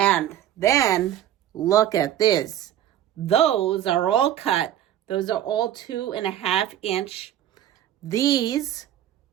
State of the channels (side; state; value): left; quieter; 11.6 dB